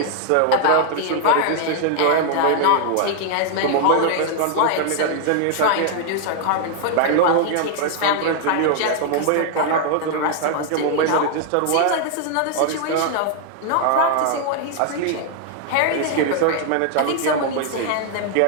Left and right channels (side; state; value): both; different; correlation 0.00